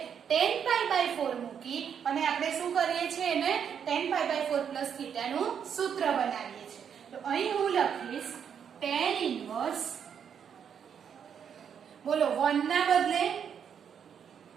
tan π/4 મૂકી અને આપણે શું કરીએ છીએ? એને tan π/4 પ્લસ θ નું સૂત્ર બનાવીએ છીએ. તો અહીં હું લખીશ tan ઇન્વર્સ, બોલો 1 ના બદલે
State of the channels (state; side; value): quieter; left; 7.8 dB